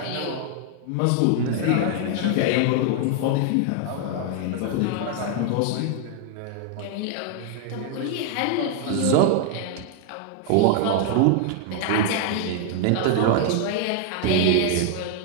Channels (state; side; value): different; both; correlation 0.00